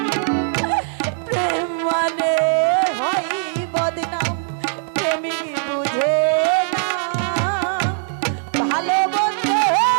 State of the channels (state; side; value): silent; left; digital silence